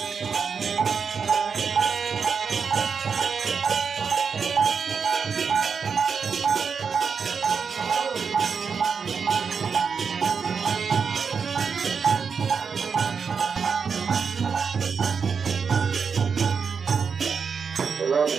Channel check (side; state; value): left; quieter; 5.9 dB